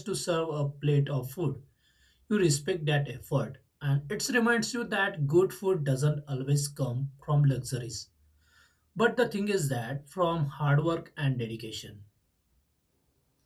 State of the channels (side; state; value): both; identical; correlation 1.00